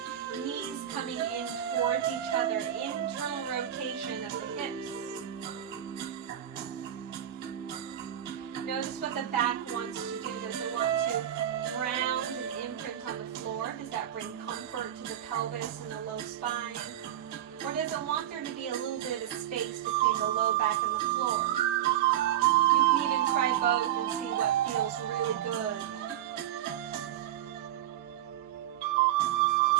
knees coming in towards each other. Internal rotation of the hips. Notice what the back wants to do. Does it want to ground and imprint on the floor? Does that bring comfort to the pelvis and the low spine? Or does it want there to be a little bit of space between the low back and the floor? You can even try both and see what feels really good.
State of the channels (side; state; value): left; quieter; 11.4 dB